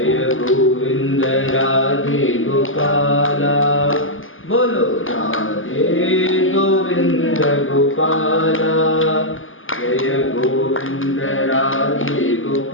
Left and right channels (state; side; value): late; right; 0.59 ms